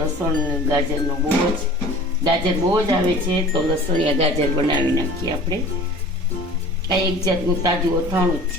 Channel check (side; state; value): both; normal; correlation 0.43